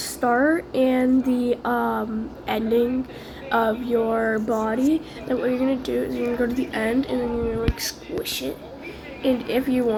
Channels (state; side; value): identical; both; correlation 1.00